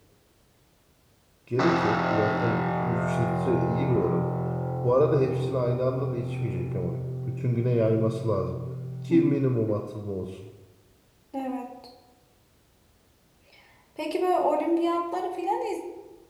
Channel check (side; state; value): both; identical; correlation 1.00